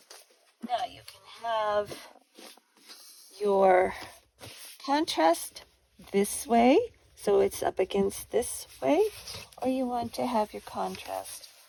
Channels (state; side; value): identical; both; correlation 1.00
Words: now you can have your contrast this way, so it's up against this way, or you want to have your contrast